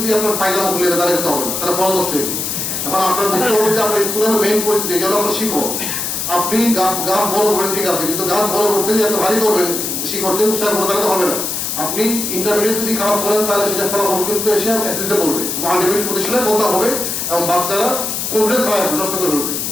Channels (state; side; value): noise; left; hiss, 2 dB below the sound